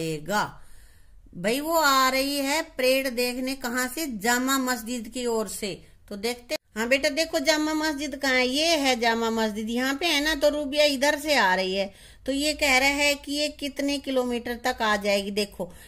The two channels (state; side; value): identical; both; correlation 1.00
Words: भाई वो आ रही है परेड देखने, कहाँ से? जामा मस्जिद की ओर से। तो देखते, हाँ बेटा देखो जामा मस्जिद कहाँ है, ये है जामा मस्जिद, यहाँ पे है ना। तो रूबिया इधर से आ रही है, तो ये कह रहा है कि ये कितने किलोमीटर तक आ जाएगी। देखो